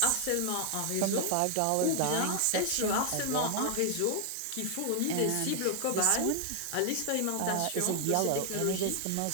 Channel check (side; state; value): both; different; correlation 0.00